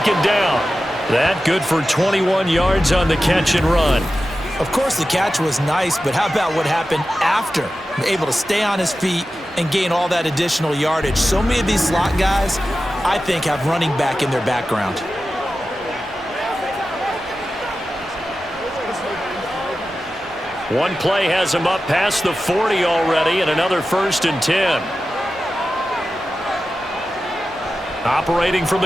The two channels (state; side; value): normal; both; correlation 0.93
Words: down. That good for 21 yards on the catch and run. Of course, the catch was nice, but how about what happened after? Able to stay on his feet and gain all that additional yardage. So many of these slot guys, I think, have running back in their background. One play has him up past the 40 already, and another 1st and 10. Operating from